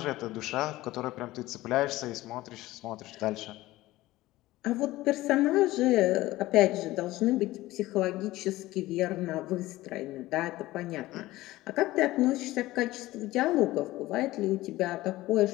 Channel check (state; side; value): quieter; right; 17.5 dB